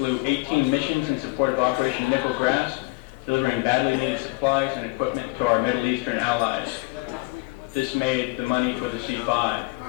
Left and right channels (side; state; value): right; quieter; 26.1 dB